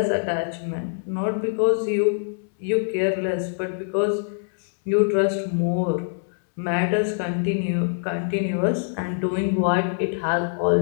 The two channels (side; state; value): right; silent; digital silence